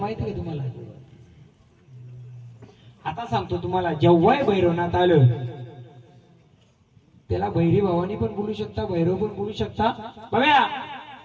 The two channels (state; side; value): identical; both; correlation 1.00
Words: का तुम्हाला? आता सांगतो तुम्हाला, जेव्हाही भैरवनाथ आलं त्याला भैरी भावानी पण बोलू शकता, भैरव पण बोलू शकता. बघा